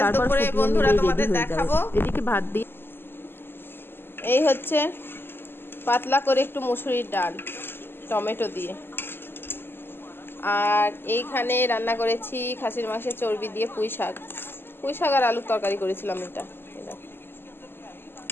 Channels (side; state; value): right; late; 0.10 ms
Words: তারপর ফুটিয়ে নিলেই রেডি হয়ে যাবে। এদিকে ভাত দিয়ে এই হচ্ছে পাতলা করে একটু মুসুরির ডাল টমেটো দিয়ে, আর এইখানে রান্না করেছি খাসির মাংসের চর্বি দিয়ে পুঁই শাক আর আলুর তরকারি করেছিলাম এটা।